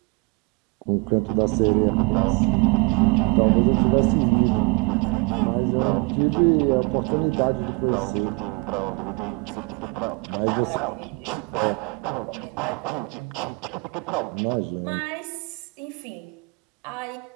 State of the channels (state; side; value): quieter; left; 29.5 dB